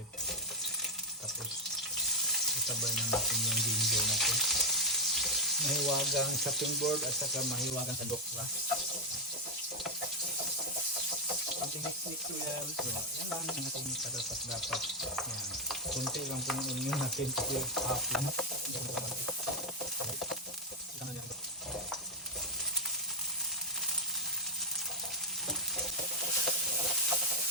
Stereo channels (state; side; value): normal; both; correlation 0.02